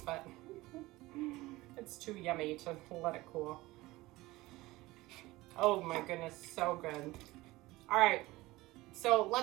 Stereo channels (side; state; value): left; quieter; 19.4 dB